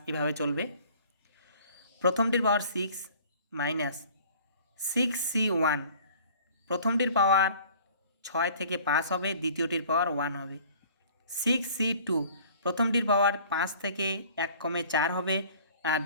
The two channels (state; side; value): inverted; both; correlation -0.50